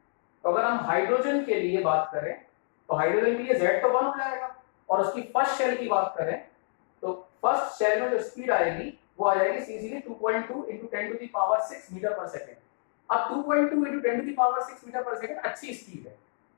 तो अगर हम हाइड्रोजन के लिए बात करें तो हाइड्रोजन के लिए Z तो 1 हो जाएगा, और उसकी फर्स्ट शेल की बात करें तो फर्स्ट शेल में जो स्पीड आएगी वो आ जाएगी सीधे 2.2 into 10 to the power 6 metre पर सेकेंड। अब 2.2 into 10 to the power 6 metre पर सेकेंड अच्छी स्पीड है,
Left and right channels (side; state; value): right; silent; digital silence